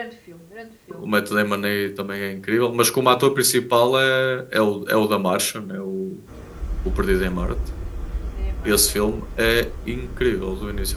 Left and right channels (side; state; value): both; identical; correlation 1.00